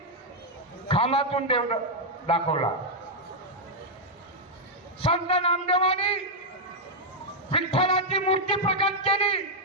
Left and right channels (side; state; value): both; normal; correlation -0.02